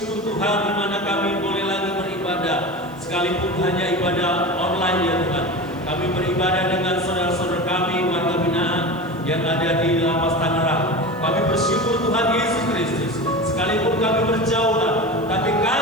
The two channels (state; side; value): noise; right; hiss, 27 dB below the sound